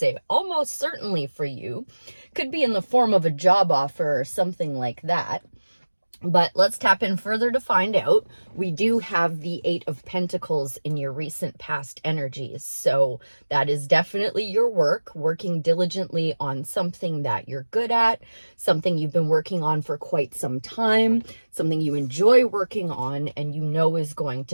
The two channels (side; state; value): both; inverted; correlation -1.00